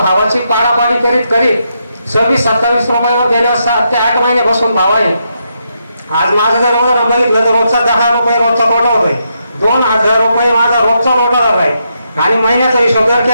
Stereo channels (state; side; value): inverted; both; correlation -0.81